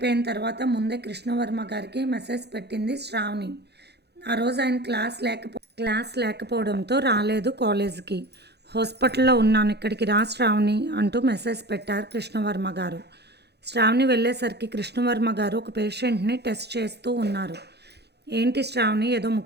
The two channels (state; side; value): late; left; 0.48 ms